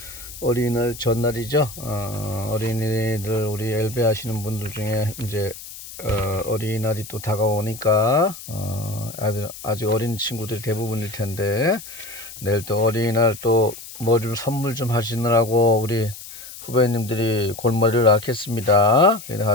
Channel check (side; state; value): left; noise; hiss, 14 dB below the sound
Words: 어린이날 전날이죠. 어린이들 우리 엘베 하시는 분들 중에 이제 어린이날이 또 다가오니까 아직 어린 친구들이 대부분일 텐데 내일 또 어린이날 또 뭐 좀 선물 좀 하시느라고 우리 후배님들이 골머리를 앓겠습니다.